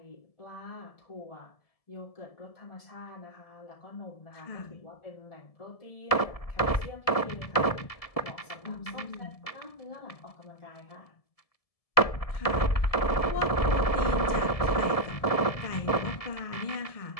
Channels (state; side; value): late; right; 1.7 ms